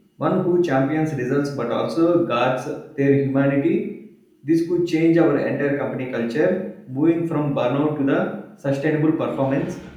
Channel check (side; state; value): both; identical; correlation 1.00